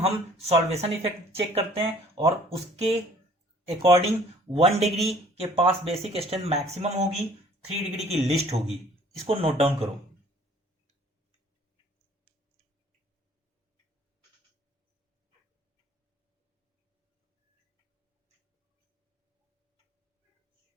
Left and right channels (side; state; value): both; normal; correlation 0.55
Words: सॉल्वेशन इफेक्ट चेक करते हैं और उसके अकॉर्डिंग 1 डिग्री के पास बेसिक स्ट्रेंथ मैक्सिमम होगी, 3 डिग्री की लिस्ट होगी। इसको नोट डाउन करो।